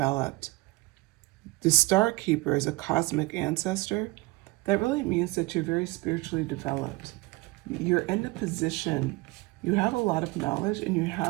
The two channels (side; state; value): left; quieter; 22.4 dB